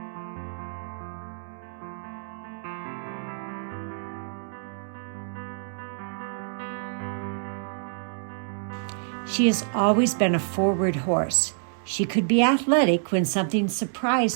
She has always been a forward horse. She could be athletic when something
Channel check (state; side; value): silent; left; digital silence